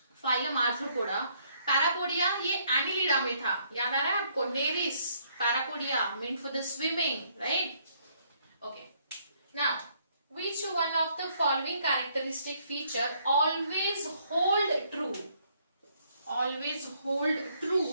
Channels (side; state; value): both; inverted; correlation -0.68